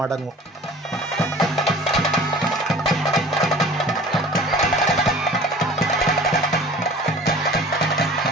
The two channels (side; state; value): both; normal; correlation 0.44